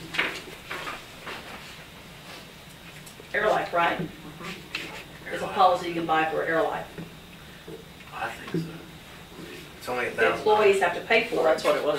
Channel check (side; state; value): both; identical; correlation 1.00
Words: Airlife, right? It's a policy you can buy for Airlife. I think so. It's only The $1,000. employees have to pay Well, for that's it. what it